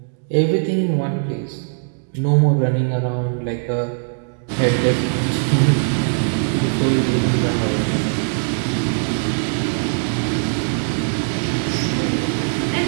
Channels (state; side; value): silent; left; digital silence